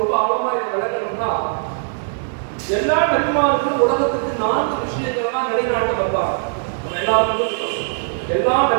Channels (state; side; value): silent; left; digital silence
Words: ஆழமா இதை விளக்கணும்னா, எல்லா நபிமார்களும் உலகத்துக்கு 4 விஷயங்கள் தான் நிலைநாட்ட வந்தாங்க. நம்ம எல்லாருக்கும் எல்லா